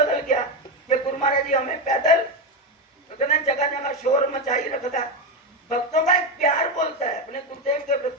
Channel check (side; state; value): both; normal; correlation 0.12